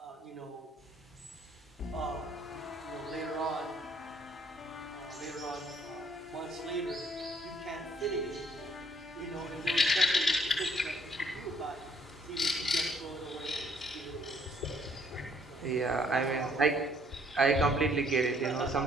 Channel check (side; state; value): both; normal; correlation 0.65